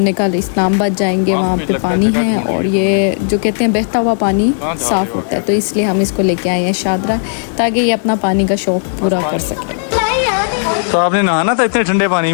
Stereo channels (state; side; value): silent; right; digital silence